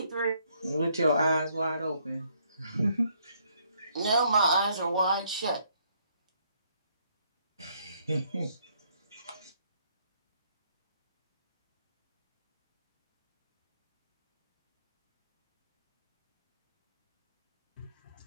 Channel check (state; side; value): inverted; both; correlation -0.69